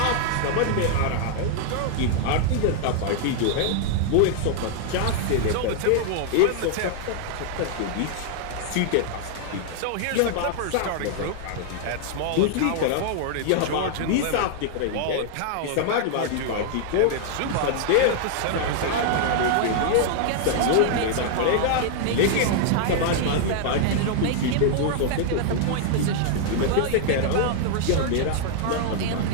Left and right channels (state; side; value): different; both; correlation -0.01